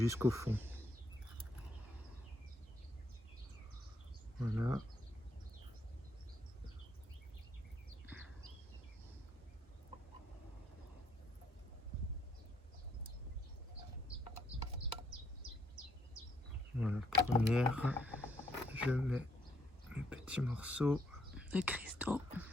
fond. Voilà. Voilà, première, je mets mes petits morceaux. De cristaux.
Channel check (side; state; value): both; normal; correlation 0.72